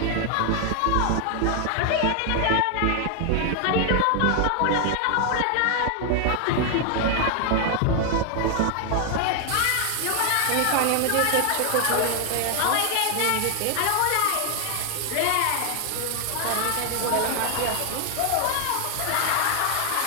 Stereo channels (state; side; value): different; both; correlation 0.00